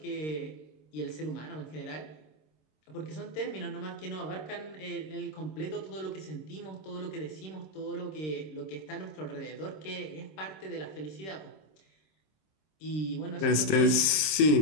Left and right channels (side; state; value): right; late; 27 ms